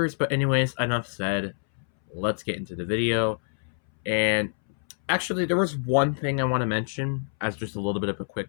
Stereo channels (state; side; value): silent; right; 61 dB below the other